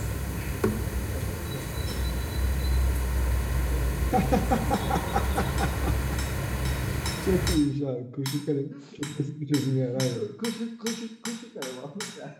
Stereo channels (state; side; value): identical; both; correlation 1.00